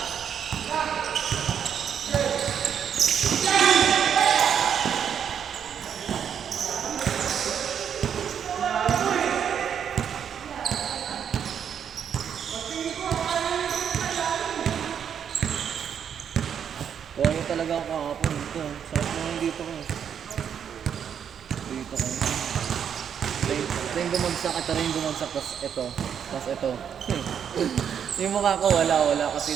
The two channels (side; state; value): left; quieter; 8.2 dB